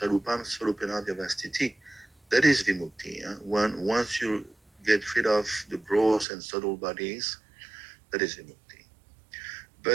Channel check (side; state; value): left; drops out; at 6.2 s